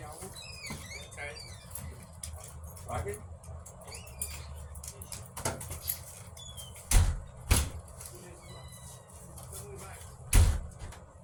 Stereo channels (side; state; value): both; identical; correlation 1.00